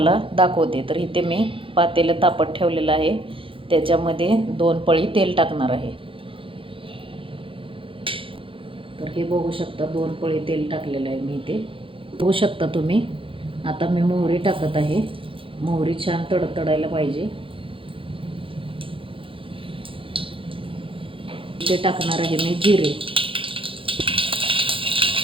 दाखवते। तर इथे मी पातेलं तापत ठेवलेलं आहे, त्याच्यामध्ये 2 पळी तेल टाकणार आहे। तर हे बघू शकता 2 पळी तेल टाकलेलं आहे मी इथे, बघू शकता तुम्ही। आता मी मोहरी टाकत आहे, मोहरी छान तडतडायला पाहिजे। इथे टाकणार आहे मी जिरे,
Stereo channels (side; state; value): left; late; 0.25 ms